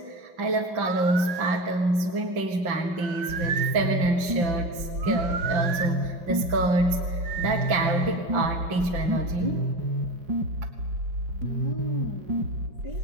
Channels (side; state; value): left; late; 5.8 ms